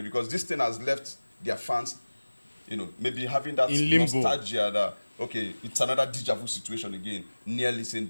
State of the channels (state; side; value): inverted; both; correlation -1.00